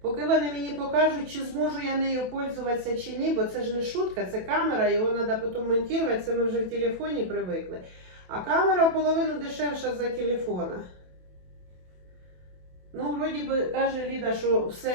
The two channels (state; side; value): late; left; 27 ms